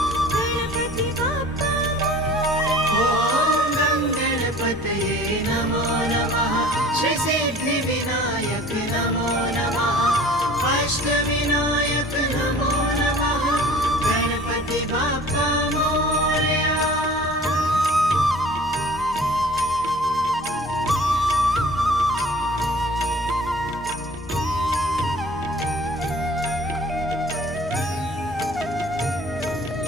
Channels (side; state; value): both; normal; correlation 0.46